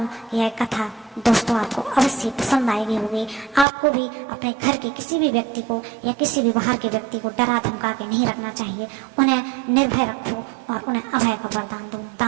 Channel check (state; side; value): drops out; left; at 3.7 s